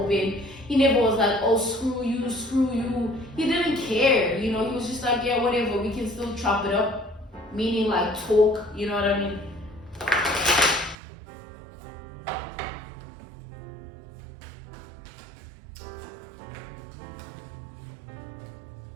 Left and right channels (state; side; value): drops out; left; at 11.0 s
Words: He never was like, oh, screw you, screw you. He didn't care, you know, he was just like, yeah, whatever, we can still chop it up. Meaning like talk, you know what I mean?